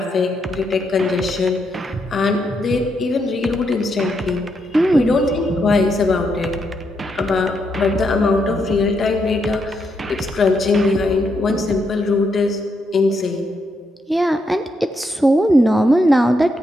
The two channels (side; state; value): both; normal; correlation 0.80